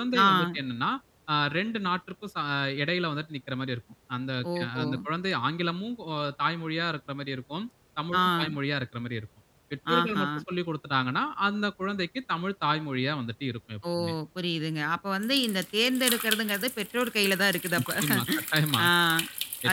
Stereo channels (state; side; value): identical; both; correlation 1.00